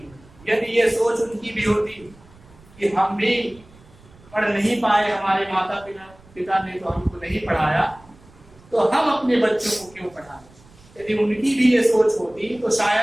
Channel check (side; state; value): right; noise; rumble, 25 dB below the sound